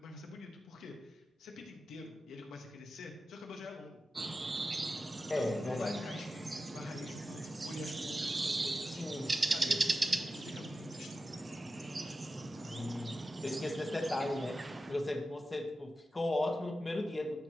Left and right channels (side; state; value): both; normal; correlation 0.93